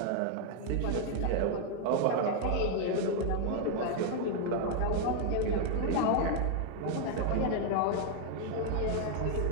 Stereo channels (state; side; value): different; both; correlation 0.00